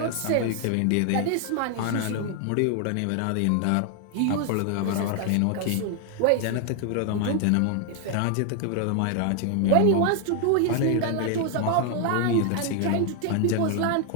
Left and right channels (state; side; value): different; both; correlation 0.00